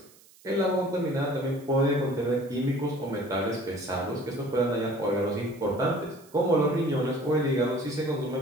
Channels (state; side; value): noise; right; hiss, 26 dB below the sound